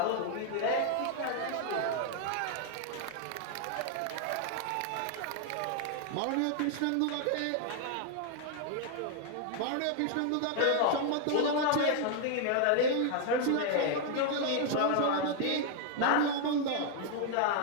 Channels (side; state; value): both; different; correlation 0.00